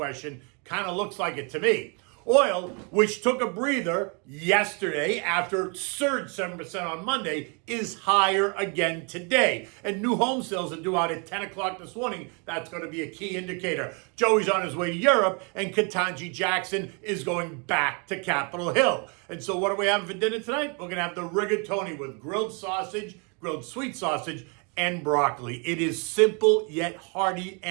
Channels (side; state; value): left; quieter; 34.7 dB